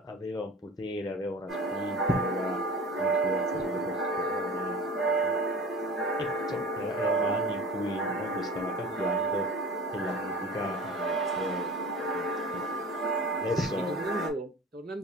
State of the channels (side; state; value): both; normal; correlation 0.38